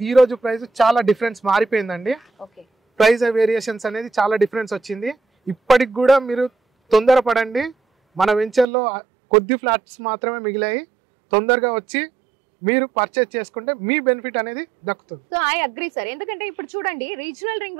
ఈ రోజు ప్రైస్ చాలా డిఫరెన్స్ మారిపోయిందండి. ప్రైస్ వేరియేషన్స్ అనేది చాలా డిఫరెన్స్ వచ్చింది. ఇప్పటికి కూడా మీరు తొందరపడండి. మన వెంచర్లో కొద్ది ఫ్లాట్స్ మాత్రమే మిగిలాయి. తొందరగా వచ్చి మీరు పర్చేస్ చేసుకుంటే మీ బెనిఫిట్ అనేది దక్కుతుంది. So I agree sir. ఎందుకంటే ఇప్పుడు చూడండి, రీజనల్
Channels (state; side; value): drops out; left; at 8.7 s